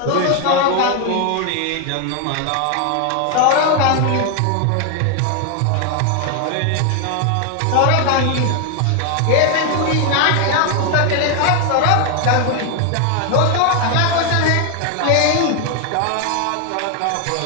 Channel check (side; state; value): both; different; correlation 0.01